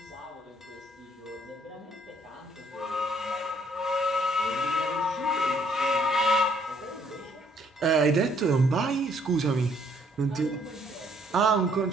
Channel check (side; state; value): both; normal; correlation 0.65